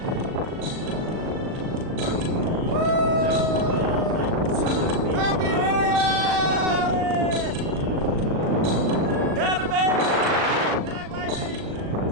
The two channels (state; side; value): late; left; 38 ms